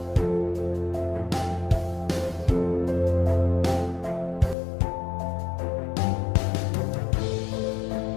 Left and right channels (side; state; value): right; drops out; at 4.5 s